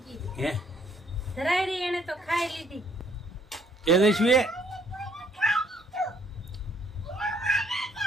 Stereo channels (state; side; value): normal; both; correlation 0.65